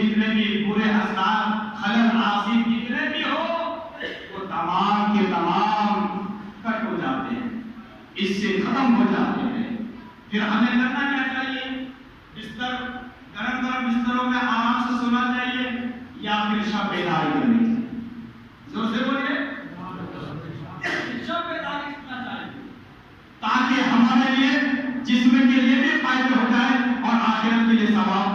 بھی برے اثرات، خلل آسیب جتنے بھی ہو، وہ تمام کے تمام کٹ ہو جاتے ہیں، اس سے ختم ہو جاتے ہیں۔ پھر ہمیں کرنا کیا چاہیے؟ بستر گرم گرم بستروں میں آرام سے سونا چاہیے یا پھر شب بیداری کرنی چاہیے؟ زور سے بولیے، شب بیداری کرنا چاہیے تاکہ ہمارے لیے جسم کے لیے بھی فائدے ہو جائے اور آخرت کے لیے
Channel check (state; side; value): identical; both; correlation 1.00